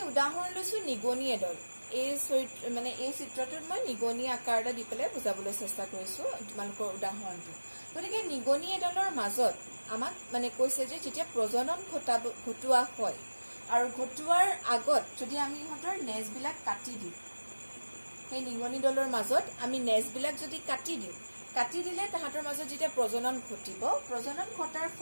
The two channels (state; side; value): inverted; both; correlation -1.00